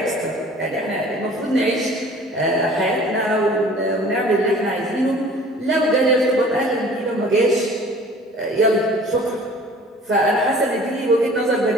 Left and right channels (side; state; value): both; normal; correlation 0.48